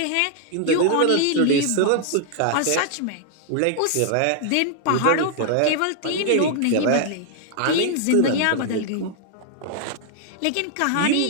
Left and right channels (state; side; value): different; both; correlation 0.00